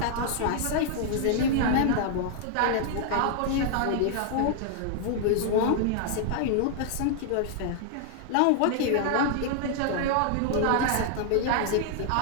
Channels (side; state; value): both; different; correlation 0.00